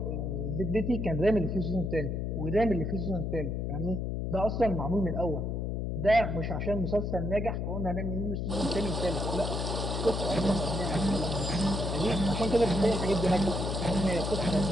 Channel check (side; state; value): left; noise; hum, 1 dB below the sound